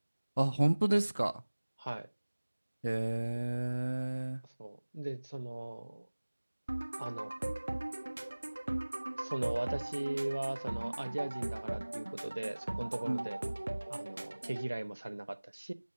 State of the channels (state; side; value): inverted; both; correlation -1.00